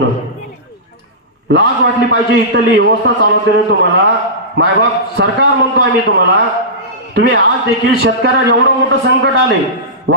लाज वाटली पाहिजे. इथली व्यवस्था चालवते तुम्हाला मायबाप सरकार म्हणतो आम्ही तुम्हाला. तुम्ही आज देखील शेतकऱ्याला एवढं मोठं संकट आले,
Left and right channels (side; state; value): both; normal; correlation -0.18